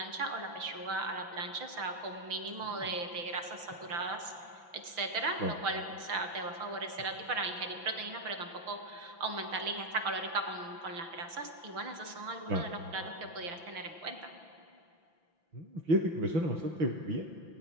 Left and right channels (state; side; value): late; left; 5.9 ms